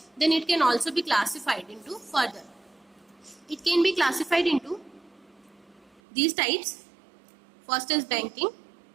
then it can also be classified into further. It can be classified into these types. First is banking.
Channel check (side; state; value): left; drops out; at 6.0 s